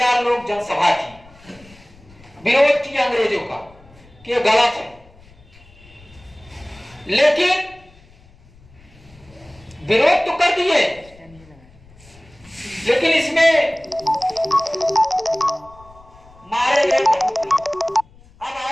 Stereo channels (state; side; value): noise; left; rumble, 25 dB below the sound